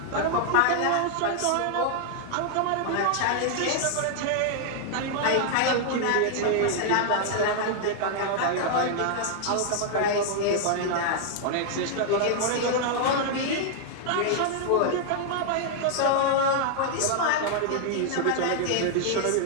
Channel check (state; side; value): different; both; correlation 0.00